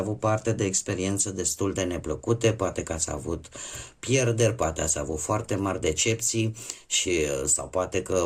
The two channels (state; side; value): identical; both; correlation 1.00